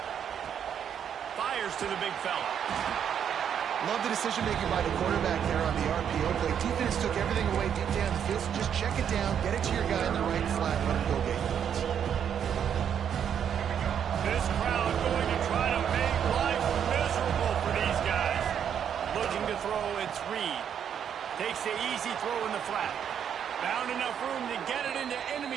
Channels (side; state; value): left; quieter; 8.5 dB